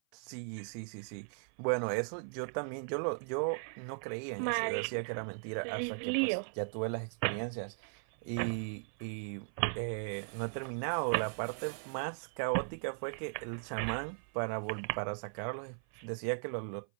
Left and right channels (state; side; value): silent; left; 53 dB below the other